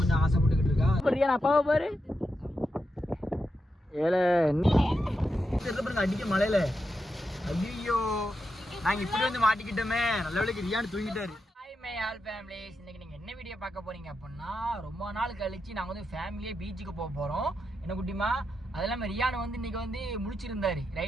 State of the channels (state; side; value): normal; both; correlation 0.86